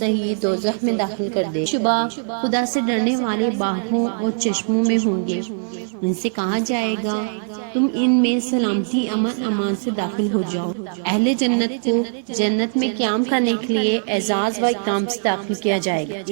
ہی دوزخ میں داخل کر دے۔ شبہ خدا سے ڈرنے والے باغوں اور چشموں میں ہوں گے، ان سے کہا جائے گا تم ان میں سلامتی امن امان سے داخل ہو جاؤ۔ اہل جنت کو جنت میں قیام کرنے کے لیے اعزاز و اکرام سے داخل کیا جائے گا۔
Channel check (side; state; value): left; silent; 65 dB below the other